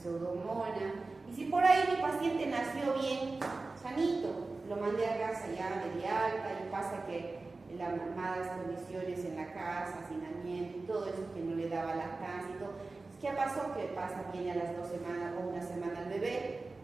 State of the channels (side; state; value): left; quieter; 3.6 dB